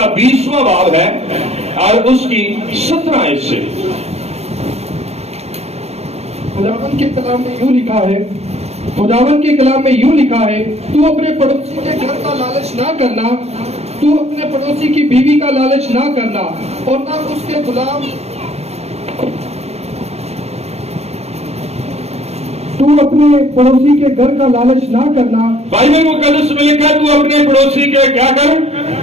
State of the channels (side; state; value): left; late; 0.31 ms